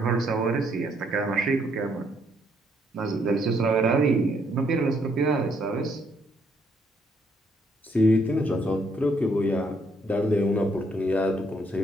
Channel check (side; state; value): both; normal; correlation 0.70